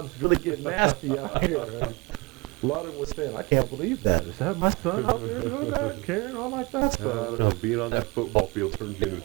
really get nasty out here. And a lot of them were saying, I can't believe that. Is that my son out there doing that? Carrying on like that? Being on that football field turns you into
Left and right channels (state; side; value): quieter; left; 25.6 dB